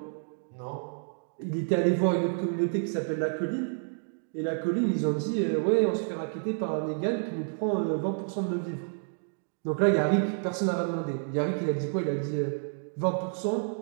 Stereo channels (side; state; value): left; silent; digital silence